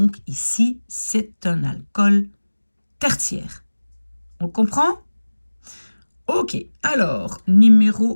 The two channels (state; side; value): inverted; both; correlation -1.00